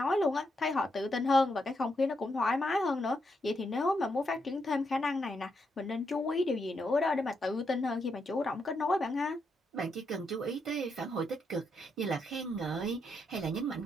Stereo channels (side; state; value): both; normal; correlation 0.80